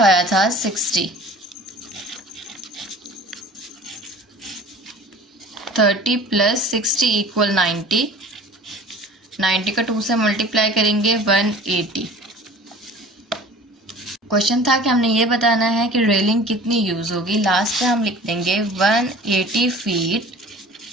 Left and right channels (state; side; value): normal; both; correlation 0.44